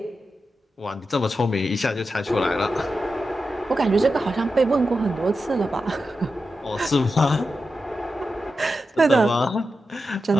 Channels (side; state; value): both; normal; correlation 0.90